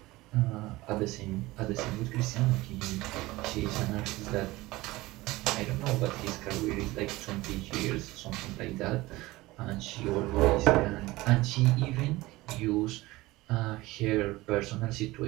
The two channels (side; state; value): left; quieter; 19.6 dB